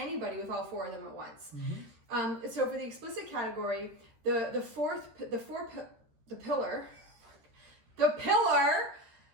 with all 4 of them at once. So for the explicit category, the pillar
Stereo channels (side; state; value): left; late; 13 ms